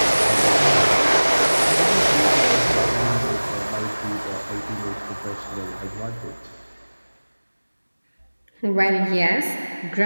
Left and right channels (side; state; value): both; inverted; correlation -1.00